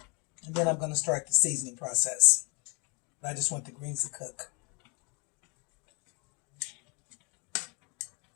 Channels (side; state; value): right; quieter; 32.4 dB